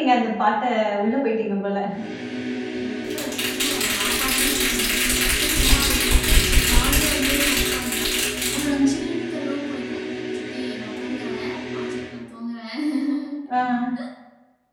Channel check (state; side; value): identical; both; correlation 1.00